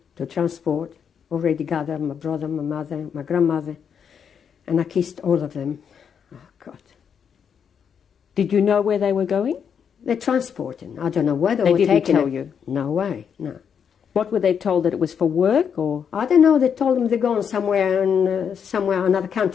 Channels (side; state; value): right; quieter; 7.4 dB